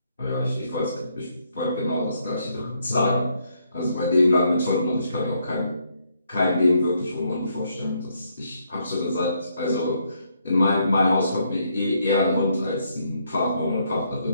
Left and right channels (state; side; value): inverted; both; correlation -0.74